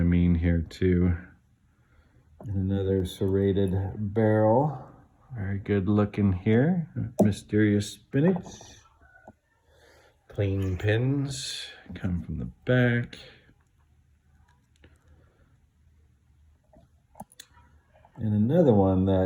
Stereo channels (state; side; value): identical; both; correlation 1.00